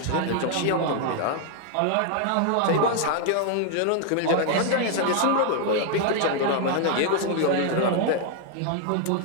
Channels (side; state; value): both; different; correlation 0.00